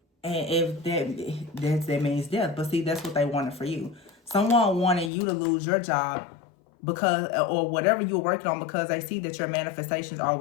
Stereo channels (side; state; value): right; drops out; at 5.1 s